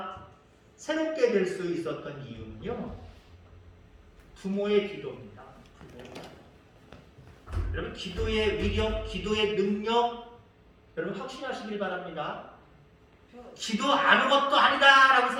새롭게 될 수 있었던 이유는요, 부모의 기도입니다. 여러분, 기도의 위력, 기도의 능력, 여러분 확신하시길 바랍니다. 기도 아무것도 아니다라고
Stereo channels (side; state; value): both; identical; correlation 1.00